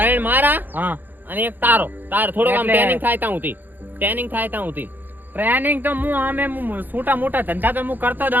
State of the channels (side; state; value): left; late; 0.088 ms